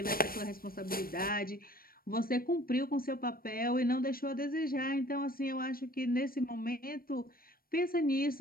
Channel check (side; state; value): right; late; 0.43 ms